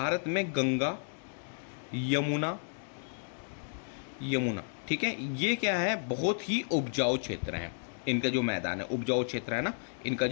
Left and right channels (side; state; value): right; silent; digital silence